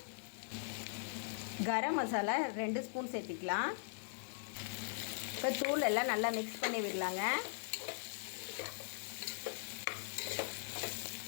கரம் மசாலா 2 ஸ்பூன் சேர்த்திக்கலாம். இப்போ தூள் எல்லாம் நல்லா மிக்ஸ் பண்ணி விடலாங்க.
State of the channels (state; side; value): silent; right; digital silence